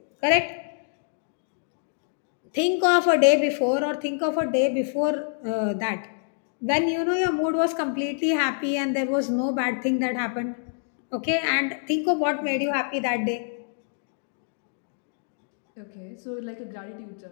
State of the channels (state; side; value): silent; right; digital silence